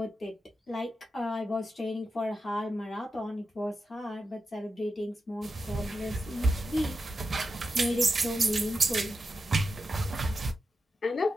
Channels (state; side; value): normal; both; correlation 0.89